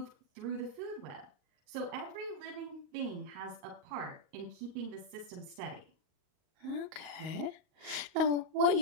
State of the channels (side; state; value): left; late; 38 ms